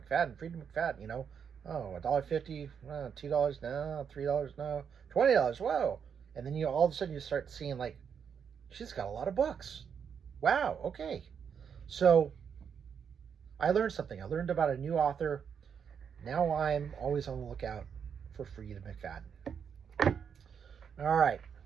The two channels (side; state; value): left; quieter; 7.2 dB